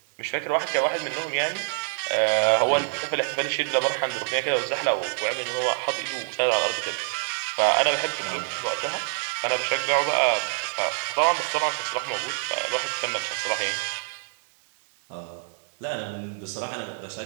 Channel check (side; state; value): left; silent; 61 dB below the other